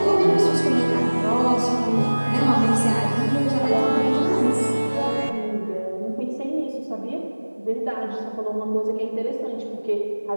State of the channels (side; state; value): both; inverted; correlation -1.00